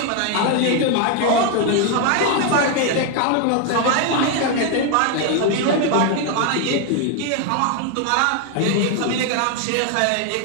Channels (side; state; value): both; different; correlation 0.01